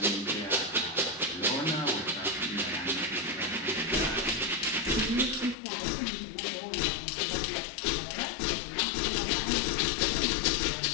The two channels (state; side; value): drops out; right; at 5.6 s